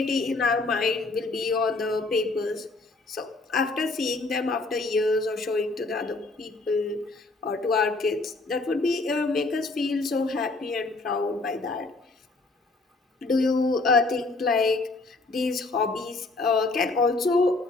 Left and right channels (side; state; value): right; quieter; 3.4 dB